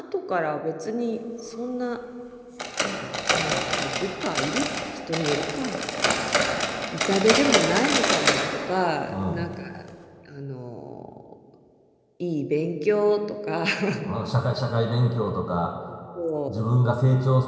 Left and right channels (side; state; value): both; identical; correlation 1.00